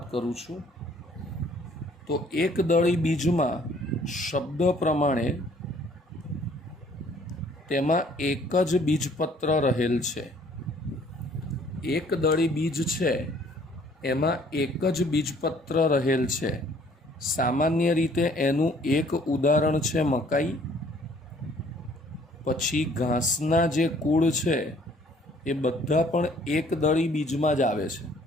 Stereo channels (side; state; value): both; normal; correlation 0.58